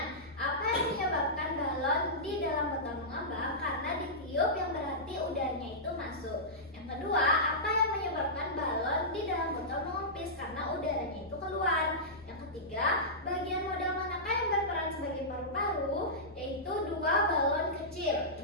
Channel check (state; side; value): normal; both; correlation -0.15